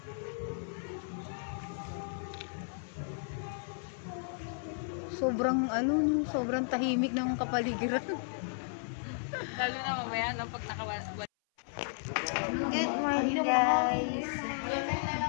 Sobrang tahimik ng kapaligiran. Lalo na mamaya no, pag nakawala. Good morning guys.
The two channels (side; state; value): right; silent; 55 dB below the other